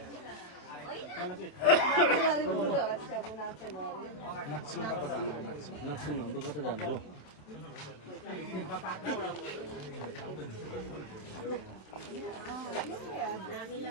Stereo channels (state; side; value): late; right; 27 ms